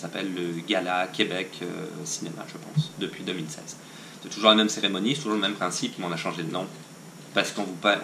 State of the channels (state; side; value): identical; both; correlation 1.00